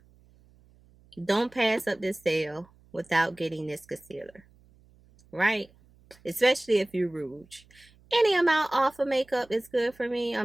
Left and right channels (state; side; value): noise; right; hum, 29 dB below the sound